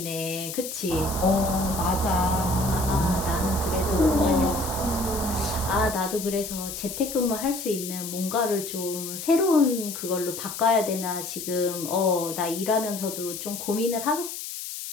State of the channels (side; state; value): left; noise; hiss, 8 dB below the sound